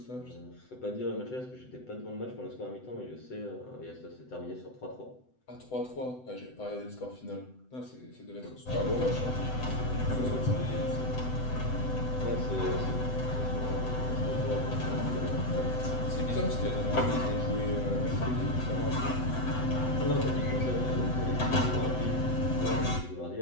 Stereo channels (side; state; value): right; late; 7.9 ms